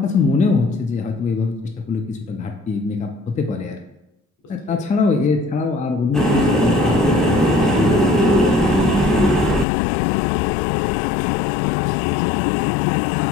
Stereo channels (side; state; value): right; drops out; at 9.7 s